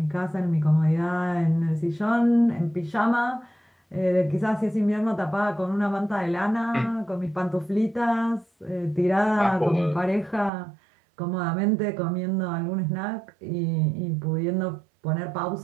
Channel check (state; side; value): drops out; left; at 10.5 s